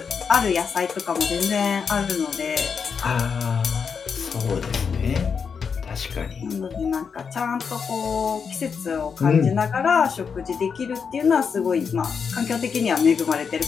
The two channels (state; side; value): quieter; right; 6.1 dB